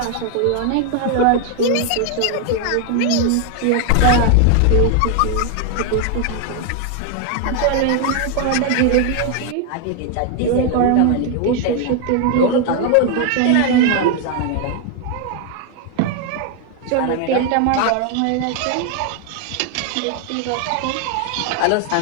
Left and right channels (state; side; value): different; both; correlation 0.01